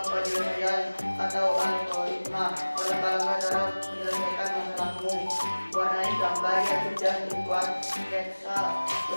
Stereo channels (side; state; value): both; inverted; correlation -1.00